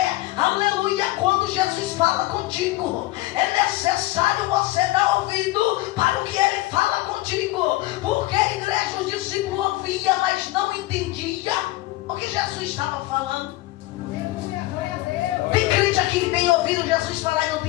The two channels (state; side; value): quieter; right; 18.2 dB